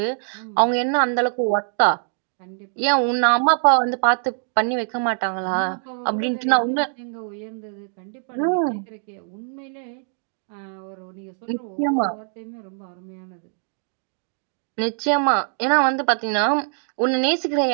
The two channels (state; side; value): silent; left; 63 dB below the other